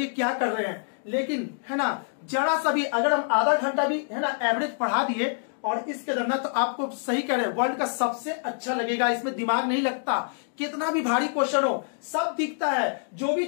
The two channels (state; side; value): silent; right; digital silence